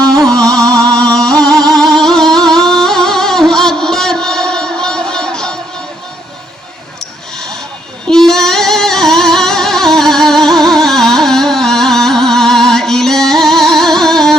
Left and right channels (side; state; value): both; normal; correlation 0.71